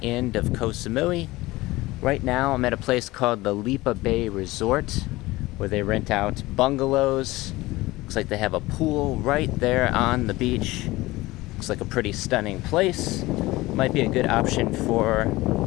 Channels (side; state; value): right; quieter; 19.5 dB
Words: end of Koh Samui. Right now, I'm at a place called the Lipa Bay Resort, where they rent out bungalows. Looks like they have a pool right there on the beach. Looks like a pretty stunning place. Might be a good option for